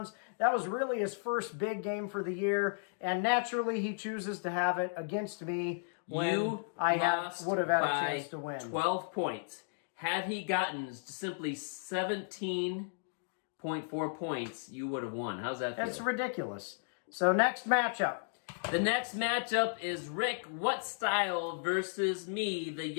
That was really his first big game for the year, and naturally he chooses to have it against me when You I lost would have had a by chance to win. 12 points. Had he gotten simply 17.4 points, you would have won. How's that feel? That's ridiculous. So next matchup. The next matchup is Rick What Style versus me, the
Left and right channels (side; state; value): right; silent; digital silence